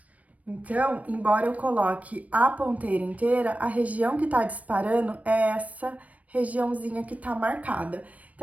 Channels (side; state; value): left; late; 0.069 ms